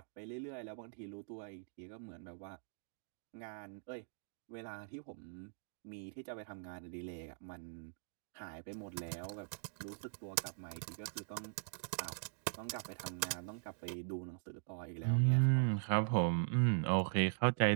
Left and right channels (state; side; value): silent; left; digital silence